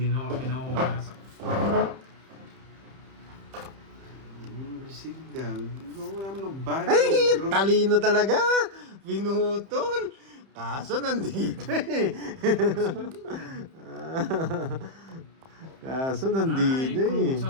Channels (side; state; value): left; late; 30 ms